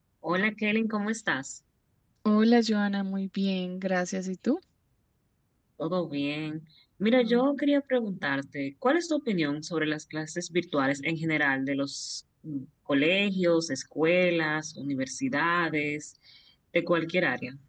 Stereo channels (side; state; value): both; identical; correlation 1.00